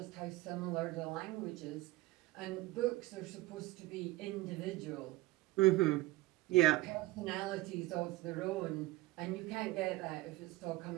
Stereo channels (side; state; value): left; quieter; 18.9 dB